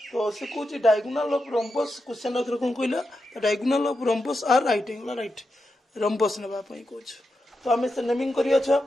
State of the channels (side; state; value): both; normal; correlation 0.87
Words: तो से कौन डायगोनाल ऑफ rhombus क्वेश्चन आउथरे कौन कहला diagonal of rhombus are right angle right rhombus ना कौन। तो आम से नेमिंग करिया